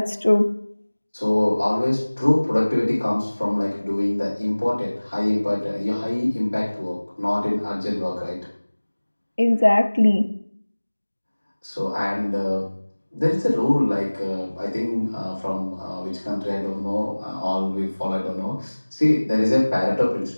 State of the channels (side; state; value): both; inverted; correlation -1.00